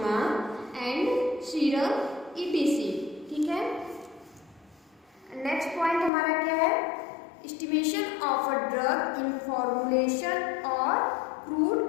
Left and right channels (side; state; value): right; drops out; at 6.1 s